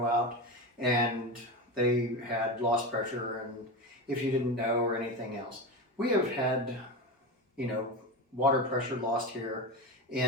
out and they had lost pressure, and if you didn't know, or anything else. We have had, water pressure lost here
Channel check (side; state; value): both; normal; correlation 0.21